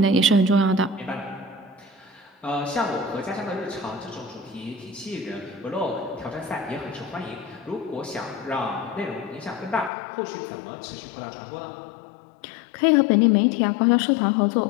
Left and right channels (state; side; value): drops out; right; at 9.9 s